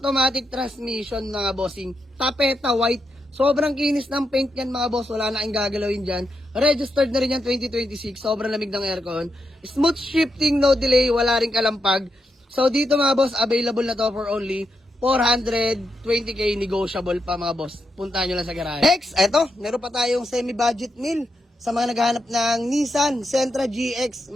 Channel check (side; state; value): both; normal; correlation 0.84